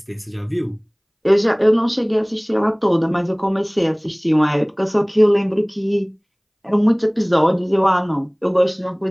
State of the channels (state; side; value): identical; both; correlation 1.00